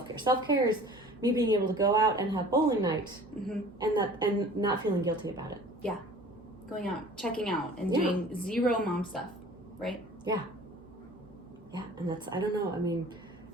Self-care is me being able to go out and have bowling night and not feeling guilty about it. Yeah. Going out, checking out, and doing zero mom stuff, right? Yeah. Yeah, and that's, I don't know, I mean,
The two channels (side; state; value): both; normal; correlation 0.46